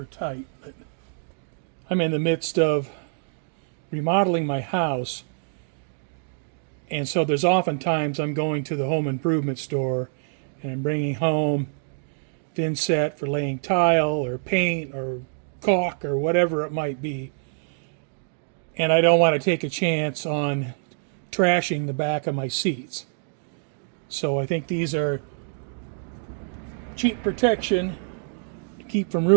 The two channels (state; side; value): silent; left; digital silence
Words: tight, but I'm in the midst of remodeling my house, and so there's oftentimes I'm going to the home improvement store and I'm bringing home thin set for laying tile or paint or caulk or whatever it might be, and I don't want to take a chance on trashing the back of my seats. So I think these are cheap protection to keep from